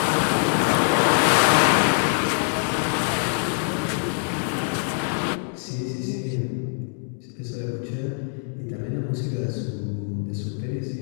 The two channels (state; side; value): silent; right; 63 dB below the other